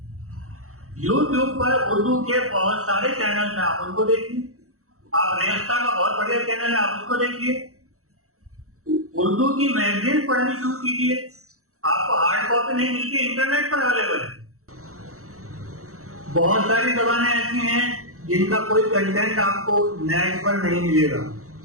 यूट्यूब पर उर्दू के बहुत सारे चैनल हैं, आप उनको देखिए। आप रेस्ता का बहुत बढ़िया चैनल है, आप उसको देखिए। उर्दू की मैगजीन पढ़नी शुरू कीजिए, आपको हार्ड कॉपी नहीं मिलती, इंटरनेट पर अवेलेबल है। बहुत सारी जबानें ऐसी हैं जिनका कोई कंटेंट आपको नेट पर नहीं मिलेगा।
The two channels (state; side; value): late; left; 0.64 ms